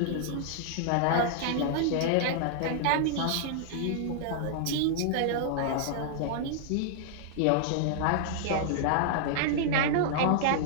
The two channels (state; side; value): different; both; correlation -0.01